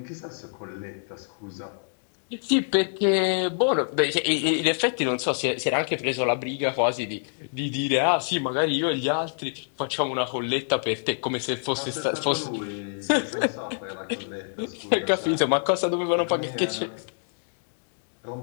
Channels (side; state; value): right; silent; digital silence